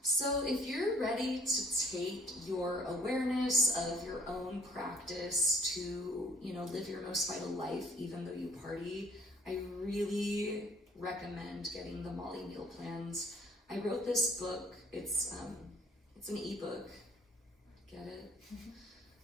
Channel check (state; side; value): normal; both; correlation 0.57